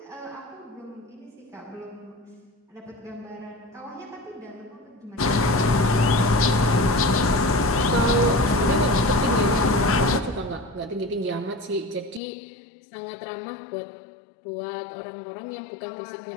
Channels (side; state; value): right; drops out; at 12.2 s